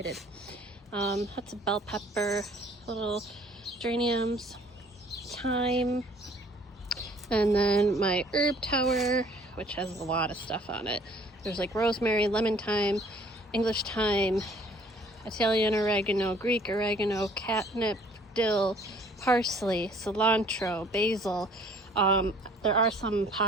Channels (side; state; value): both; normal; correlation 0.56